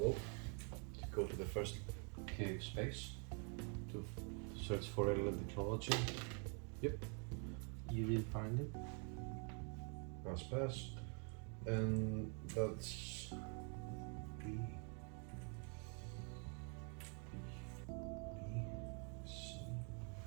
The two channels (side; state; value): left; quieter; 38.8 dB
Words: to go to the first cave space to search for alien technology. Yep, You did find it. pass. And that's B. C.